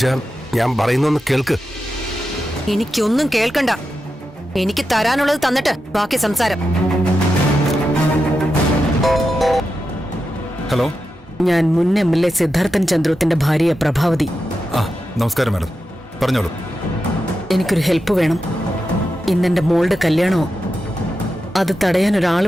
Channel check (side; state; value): both; normal; correlation 0.89